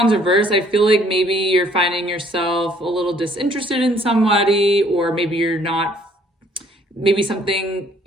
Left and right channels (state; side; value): normal; both; correlation 0.62